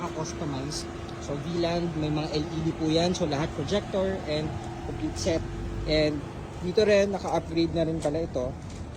So V-Land, may mga LED po yan. So lahat projector and complete set. And dito rin, naka-upgrade na rin pala ito.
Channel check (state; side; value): identical; both; correlation 1.00